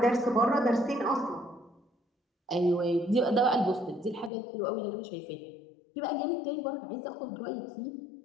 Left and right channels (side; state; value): right; drops out; at 4.3 s